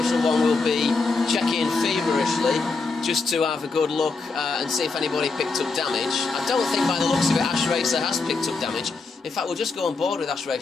1 will be checking feverishly just to have a good look and see if anybody picked up damage. I don't think by the looks of it Ash Racer has picked up damage. In fact, we'll just go on board with Ash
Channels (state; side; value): quieter; right; 4.1 dB